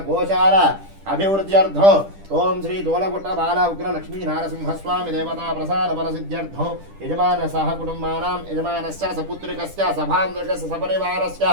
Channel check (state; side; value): late; left; 10 ms